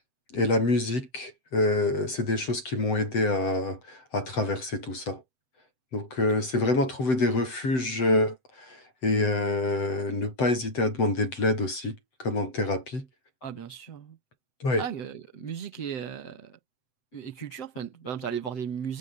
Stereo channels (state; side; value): late; right; 7.8 ms